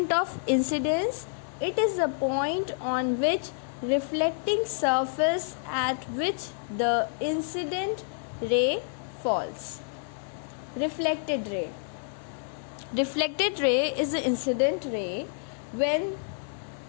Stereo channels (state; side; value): silent; right; 55 dB below the other